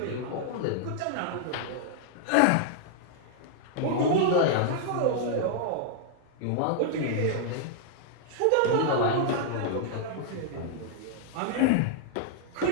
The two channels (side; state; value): both; different; correlation -0.01